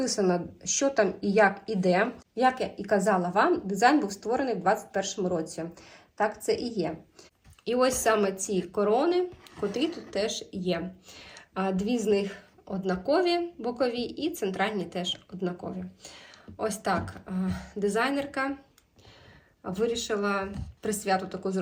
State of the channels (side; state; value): both; identical; correlation 1.00